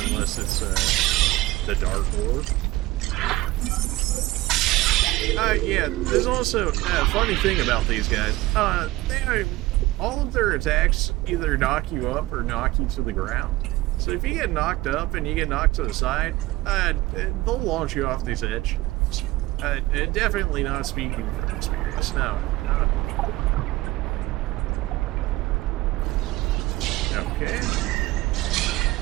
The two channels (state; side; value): quieter; left; 18.5 dB